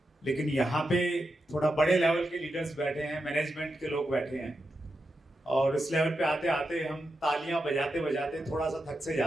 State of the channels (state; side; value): normal; both; correlation 0.88